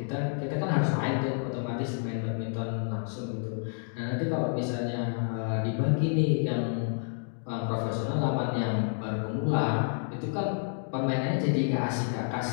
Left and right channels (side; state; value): right; silent; 58 dB below the other